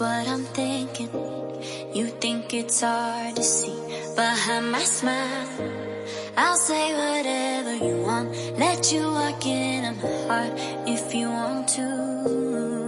I'm thinking. You think it's hard to see behind my smile. I'll say whatever you want, let you walk into my heart if you want to.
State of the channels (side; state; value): both; identical; correlation 1.00